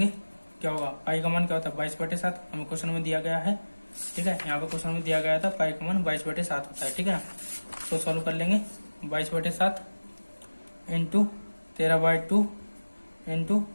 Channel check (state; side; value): inverted; both; correlation -1.00